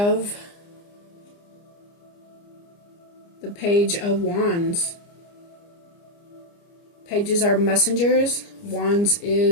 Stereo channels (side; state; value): right; late; 29 ms